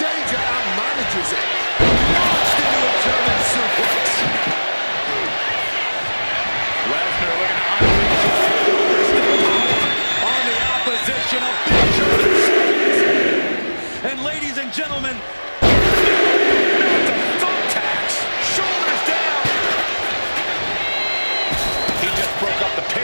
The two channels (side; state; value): both; inverted; correlation -1.00